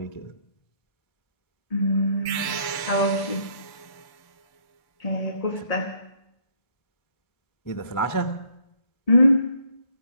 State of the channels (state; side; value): late; right; 1.1 ms